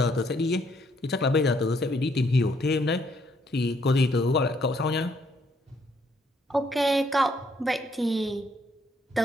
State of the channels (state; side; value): normal; both; correlation 0.70